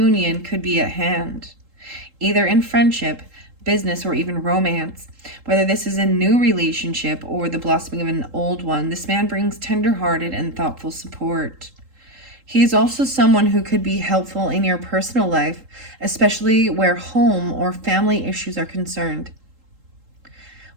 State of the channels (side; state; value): left; late; 3.8 ms